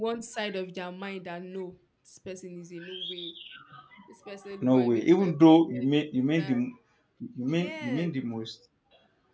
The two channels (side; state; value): both; identical; correlation 1.00